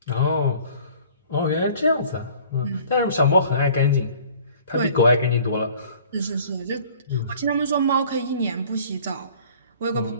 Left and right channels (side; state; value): both; inverted; correlation -0.51